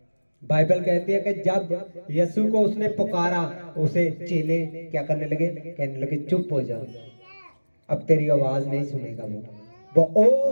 बाइबल कहती है कि जब यीशु को उसने पुकारा, उसे चेले क्या करने लगे? कहने लगे चुप हो जाओ, अब तेरी आवाज नहीं सुनेगा। वो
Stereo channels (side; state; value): both; inverted; correlation -1.00